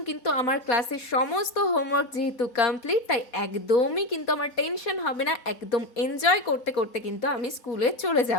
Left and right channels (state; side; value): late; right; 4.2 ms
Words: কিন্তু আমার ক্লাসের সমস্ত হোমওয়ার্ক যেহেতু কমপ্লিট, তাই একদমই কিন্তু আমার টেনশন হবে না। একদম এনজয় করতে করতে কিন্তু আমি স্কুলে চলে